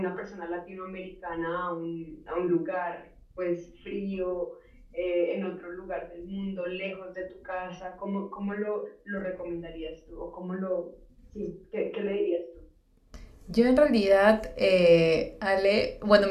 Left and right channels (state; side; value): identical; both; correlation 1.00